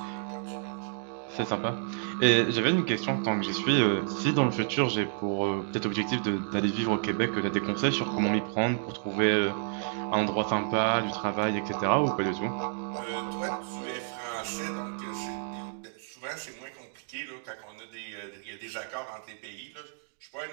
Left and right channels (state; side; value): silent; left; digital silence